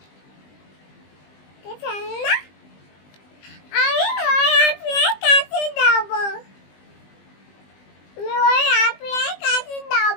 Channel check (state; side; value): late; right; 20 ms